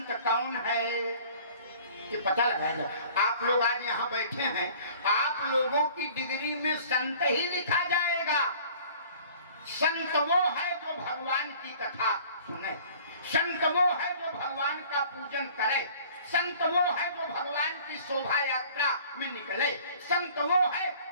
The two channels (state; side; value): inverted; both; correlation -0.50